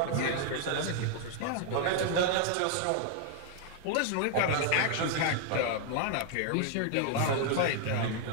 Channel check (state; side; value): different; both; correlation 0.00